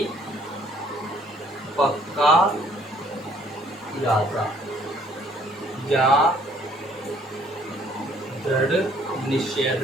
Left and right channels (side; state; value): both; normal; correlation 0.61